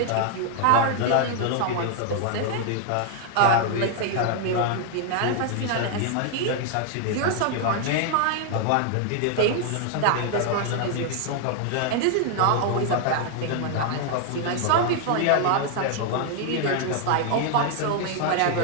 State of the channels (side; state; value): both; different; correlation 0.00